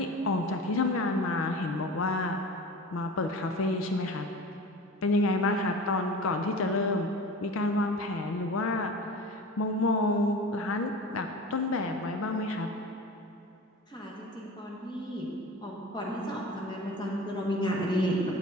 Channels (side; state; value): both; normal; correlation 0.36